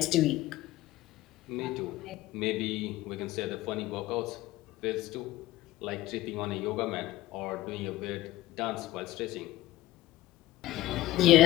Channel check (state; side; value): quieter; right; 16.5 dB